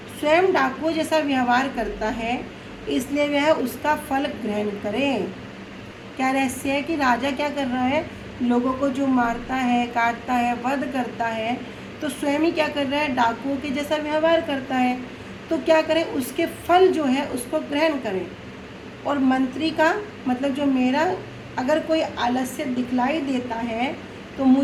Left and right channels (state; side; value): identical; both; correlation 1.00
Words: स्वयं डाकुओं जैसा व्यवहार करता है, इसलिए वह उसका फल ग्रहण करे। क्या रहस्य है कि राजा क्या कर रहा है, लोगों को जो मारता है, काटता है, वध करता है, तो स्वयं ही क्या कर रहा है, डाकुओं के जैसा व्यवहार करता है। तो क्या करे, उसके फल जो है उसको ग्रहण करे। और मंत्री का मतलब जो मेरा अगर कोई आलस्य दिखलाई देता है तो